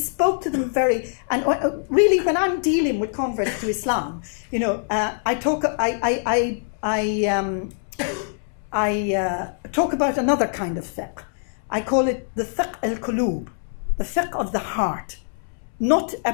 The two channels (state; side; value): silent; right; 63 dB below the other